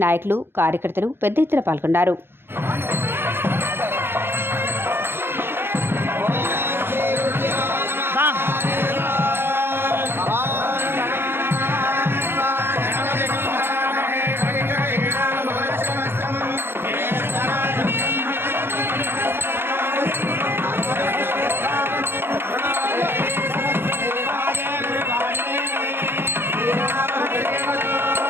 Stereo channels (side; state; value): left; late; 0.11 ms